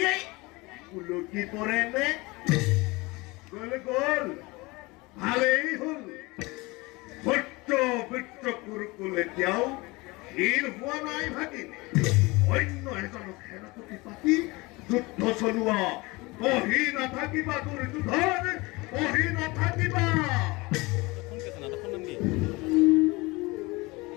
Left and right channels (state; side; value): quieter; right; 23.7 dB